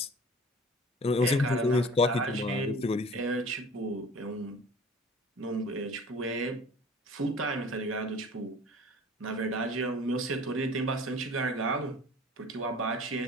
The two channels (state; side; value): normal; both; correlation 0.44